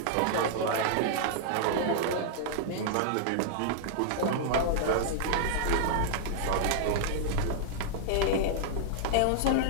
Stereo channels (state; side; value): different; both; correlation -0.01